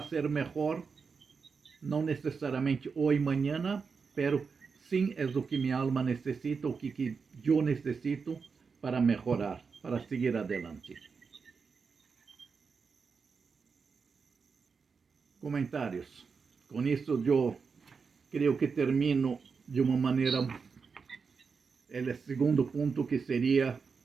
ser melhor, não necessariamente hoje, amanhã, pero sim é o que minha alma necessita, o que eu necessito para melhorar, para seguir adelante. Comentários. Com isso, eu creio que termino de uma maneira, o segundo ponto, que seria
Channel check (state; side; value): quieter; left; 5.3 dB